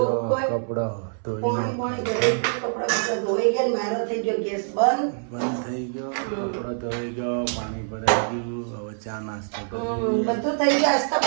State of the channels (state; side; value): silent; left; 62 dB below the other